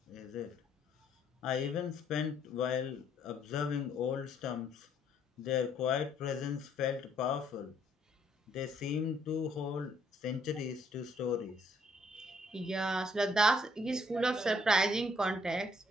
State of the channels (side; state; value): both; normal; correlation 0.67